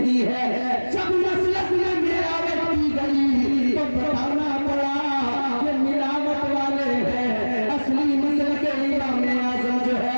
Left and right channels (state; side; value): inverted; both; correlation -1.00